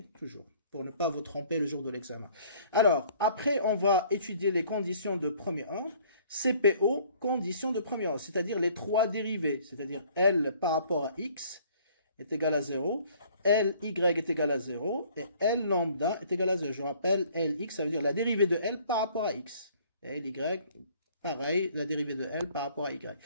Toujours. Pour ne pas vous tromper le jour de l'examen. Alors, après, on va étudier les conditions de premier ordre. CPO, conditions de premier ordre, c'est-à-dire les trois dérivés, c'est-à-dire L par rapport à X, est égal à 0, Ly est égal à 0, et L lambda est égal à 0. Je rappelle, Lx, ça veut dire la dérivée de L par rapport à x. Et Ly, pareil, la dérivée de L par rapport à y.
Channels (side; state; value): both; inverted; correlation -0.56